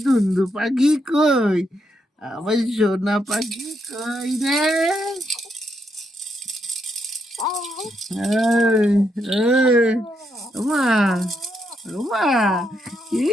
দুন্দু পাখি কই, আমার সোনা পাখি কই রে? মা মা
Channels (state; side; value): normal; both; correlation 0.78